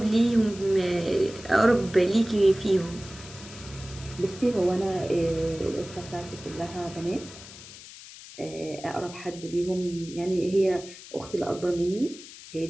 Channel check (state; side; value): noise; left; hiss, 16 dB below the sound